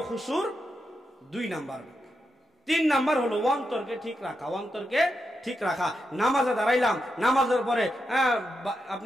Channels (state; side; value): normal; both; correlation 0.86